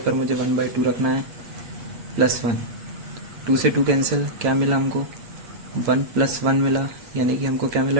पर मुझे 1 बाई 2 रखना है प्लस 1, 2 से 2 कैंसिल, क्या मिला हमको 1 प्लस 1 मिला, यानी कि हमको क्या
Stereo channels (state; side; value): late; left; 8.3 ms